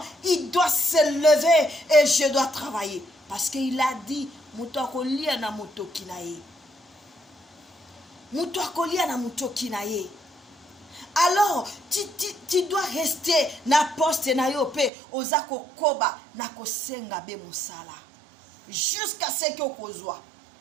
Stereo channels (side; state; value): left; drops out; at 14.9 s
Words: Il doit se lever et je dois travailler. Parce qu'il a dit, Mutakolia na mutokinaye. Alors, tu dois rester na poste na yo pe ozako koba na kosenga be musala. Jusqu'à ce que okozwa.